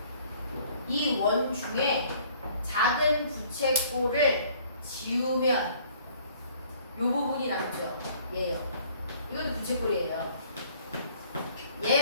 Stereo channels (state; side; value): inverted; both; correlation -0.57